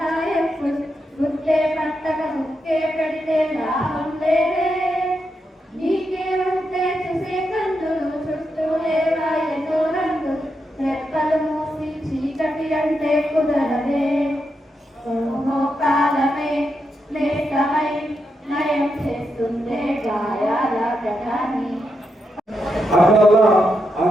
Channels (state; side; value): normal; both; correlation 0.84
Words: గుట్టే పట్టక ముక్కే పెడితే లాభం లేదే, నీకే ఉంటే చూసే కందులు చుట్టూ లేవా ఎన్నో రంగులు, రెక్కలు మూసి చీకటి అంటే కుదరదే, ఓహో కాలమే లేఖమై నయం చేస్తుందే గాయాల గతాన్ని. అట్లా